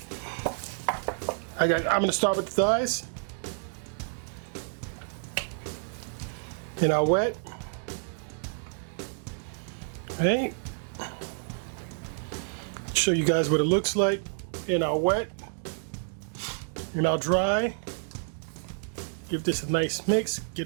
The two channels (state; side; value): silent; left; digital silence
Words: All right, guys, I'm gonna start with the thighs. In our wet, right? Show you guys what it looks like in our wet, in our dry. Give this a nice mix, get